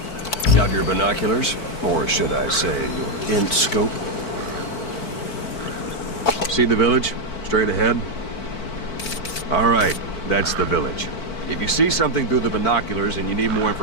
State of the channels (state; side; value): late; right; 4.5 ms